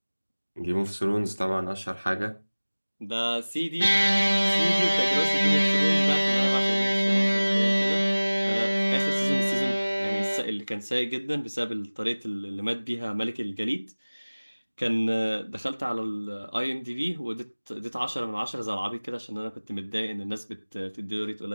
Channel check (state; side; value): inverted; both; correlation -1.00